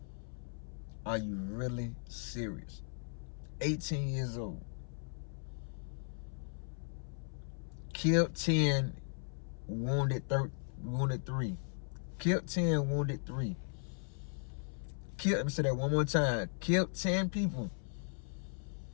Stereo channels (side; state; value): right; silent; 53 dB below the other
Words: Are you really serious? 18 years old. Killed 10, wounded 3. Killed 10, wounded 3. Let me say that one more time. Killed 10 people.